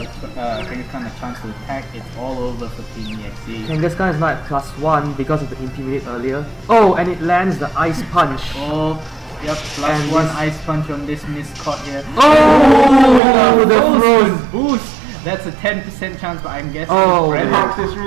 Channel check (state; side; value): drops out; left; at 13.2 s